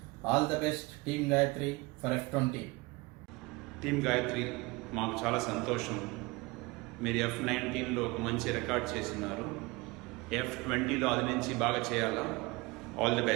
All the best team Gayatri for F20. Team Gayatri మాకు చాలా సంతోషం. మీరు F19లో ఒక మంచి రికార్డ్ చేస్తున్నారు. F20లో అది నుంచి బాగా చేయాలా. All the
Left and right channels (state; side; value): quieter; left; 24.1 dB